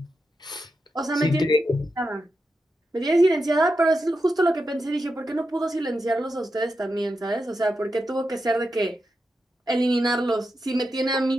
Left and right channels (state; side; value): normal; both; correlation 0.88